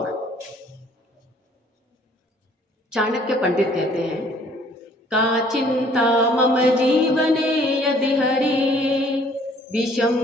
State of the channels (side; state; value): both; normal; correlation 0.58